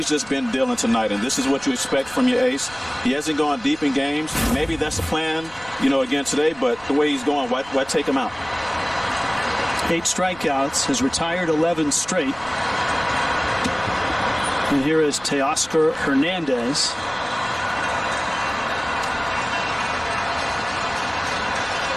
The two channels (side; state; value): right; noise; rumble, 23 dB below the sound